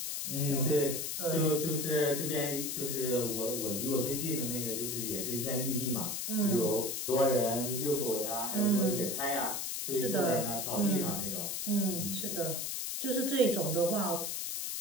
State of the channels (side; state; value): left; noise; hiss, 3 dB below the sound